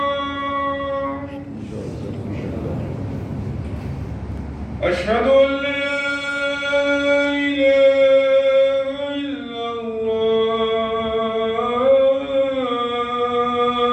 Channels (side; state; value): both; identical; correlation 1.00